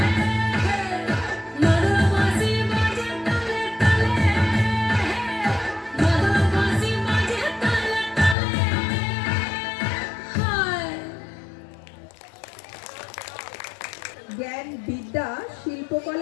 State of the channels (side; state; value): right; drops out; at 8.3 s